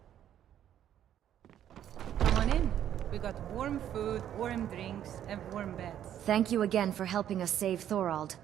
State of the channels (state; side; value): quieter; left; 10.6 dB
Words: Come on in. We got warm food, warm drinks, and warm beds. Thank you again for helping us save Thorald.